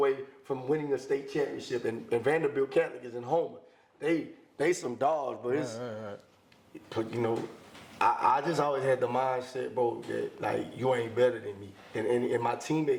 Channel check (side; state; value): both; identical; correlation 1.00